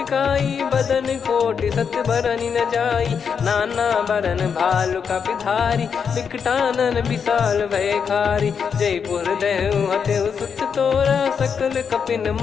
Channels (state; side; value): quieter; right; 6.6 dB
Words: बदन कोटि सत बरनि न जाई। नाना बरन भालु कपिधारी विकटानन विशाल भयखारी। जयपुर देहु हतेउ सुत तोरा सकल कपिन